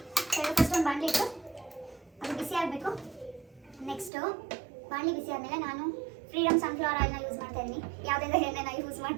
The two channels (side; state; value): left; drops out; at 4.1 s